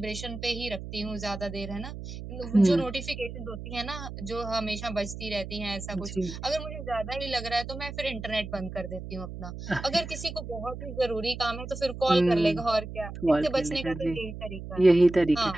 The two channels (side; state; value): right; noise; hum, 10 dB below the sound